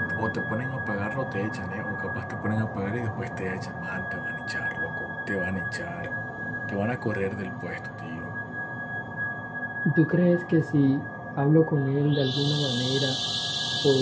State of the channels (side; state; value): both; identical; correlation 1.00